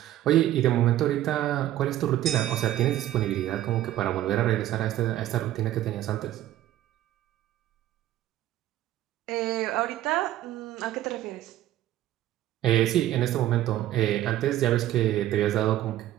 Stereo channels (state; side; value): quieter; left; 13.6 dB